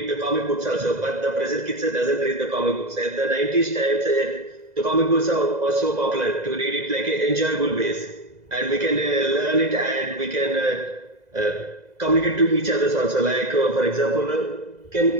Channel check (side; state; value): left; late; 2.0 ms